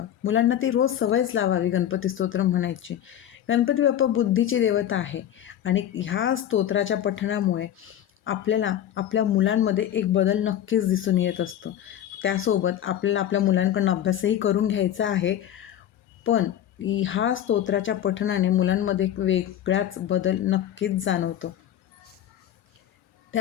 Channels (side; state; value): right; quieter; 10.9 dB